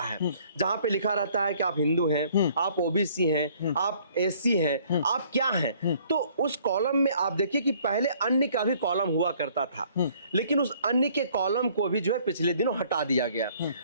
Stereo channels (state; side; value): inverted; both; correlation -0.59